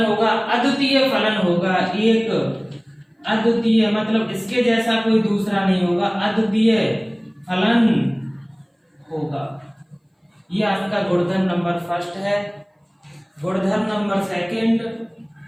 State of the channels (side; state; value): both; identical; correlation 1.00